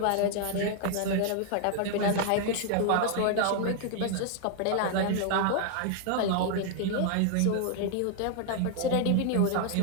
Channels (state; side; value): different; both; correlation 0.00